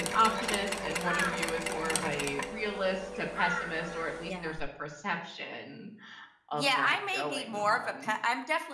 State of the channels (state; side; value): identical; both; correlation 1.00